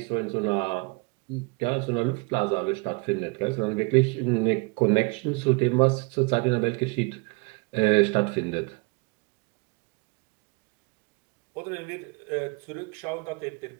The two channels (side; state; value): left; quieter; 29.3 dB